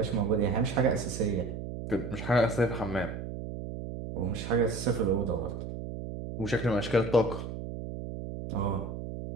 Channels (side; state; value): right; noise; hum, 7 dB below the sound